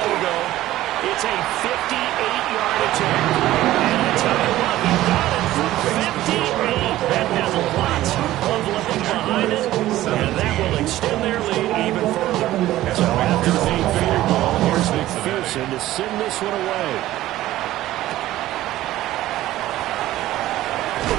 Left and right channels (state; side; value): quieter; left; 15.1 dB